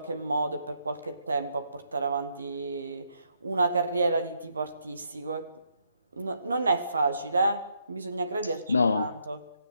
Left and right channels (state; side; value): inverted; both; correlation -0.76